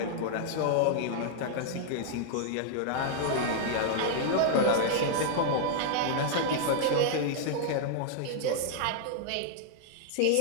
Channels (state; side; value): different; both; correlation -0.01